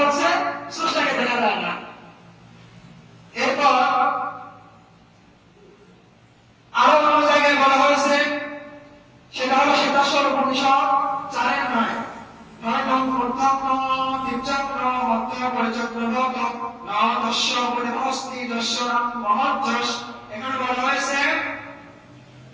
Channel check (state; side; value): identical; both; correlation 1.00